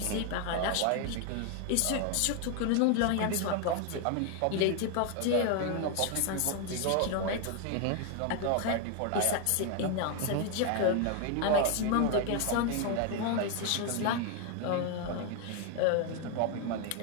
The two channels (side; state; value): both; different; correlation 0.01